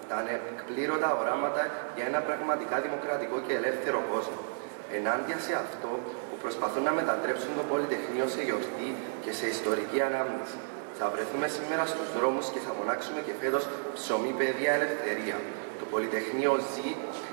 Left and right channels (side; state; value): left; silent; digital silence